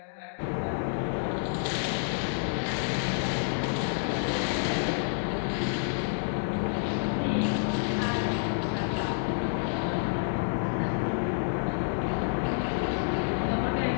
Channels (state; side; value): silent; right; digital silence